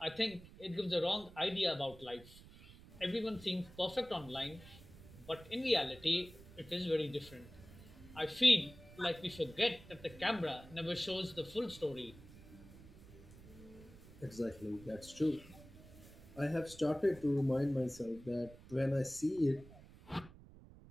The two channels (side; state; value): right; noise; rumble, 19 dB below the sound